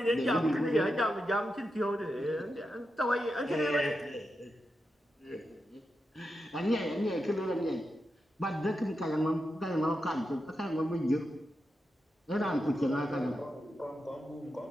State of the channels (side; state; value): both; normal; correlation 0.88